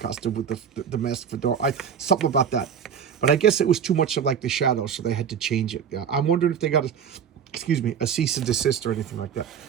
with the mask fedora. Something about that. But I guess it was too much of like the shadow, so they had to change it. Yeah, I'm wondering if they got a cease and desist or anything like that.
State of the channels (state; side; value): quieter; left; 7.6 dB